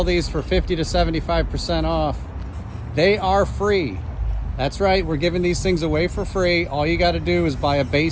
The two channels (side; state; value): both; identical; correlation 1.00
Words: these for 50 to 75% off, they are free. That's right, we're giving these things away for free. All you got to do is buy a